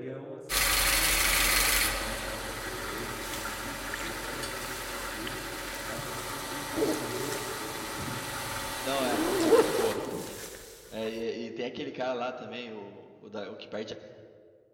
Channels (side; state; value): both; identical; correlation 1.00